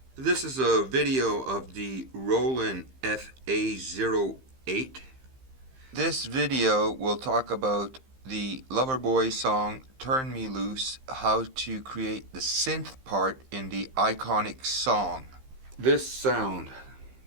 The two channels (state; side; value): late; left; 15 ms